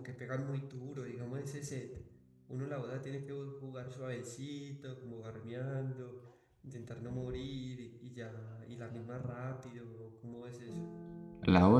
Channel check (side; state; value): both; identical; correlation 1.00